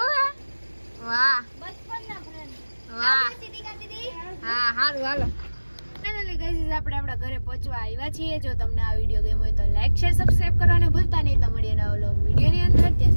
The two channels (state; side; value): inverted; both; correlation -1.00